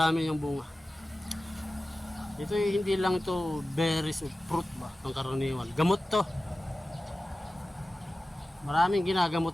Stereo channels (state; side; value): normal; both; correlation 0.95